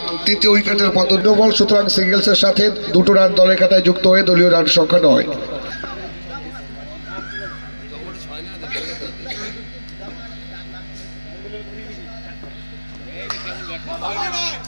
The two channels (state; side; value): inverted; both; correlation -1.00